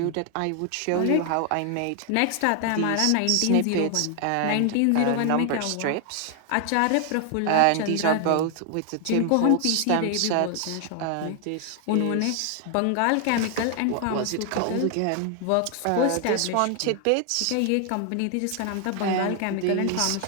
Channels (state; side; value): different; both; correlation 0.00